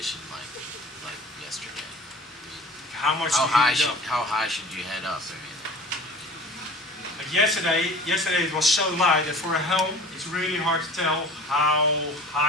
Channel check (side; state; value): both; normal; correlation 0.42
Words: like yesterday? How much How to high heat it should up? how high should you head up? I mean, Like yesterday it was so light that for a helm, it's really hard to tell how